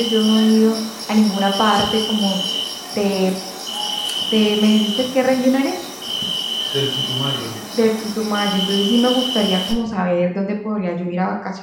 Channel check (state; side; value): identical; both; correlation 1.00